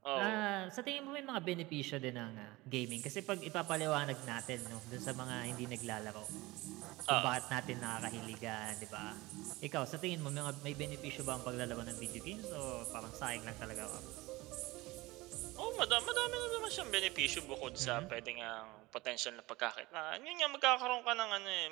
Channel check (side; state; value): left; quieter; 20.9 dB